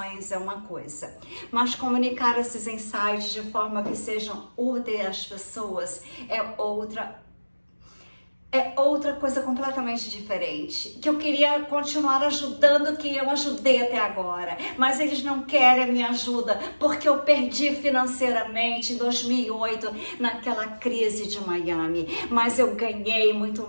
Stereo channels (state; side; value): inverted; both; correlation -1.00